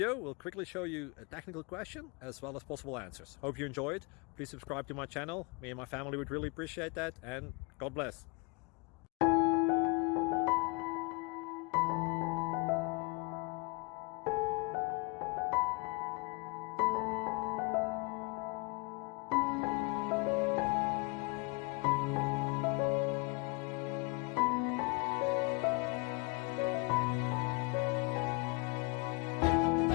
will quickly show you a technical question as well as possible answers. Hope you enjoy it. Please subscribe to my channel. Me and my family would really appreciate that, and God bless.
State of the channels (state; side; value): quieter; right; 29.8 dB